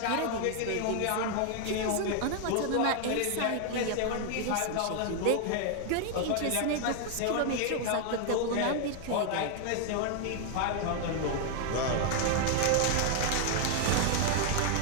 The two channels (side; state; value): both; different; correlation 0.00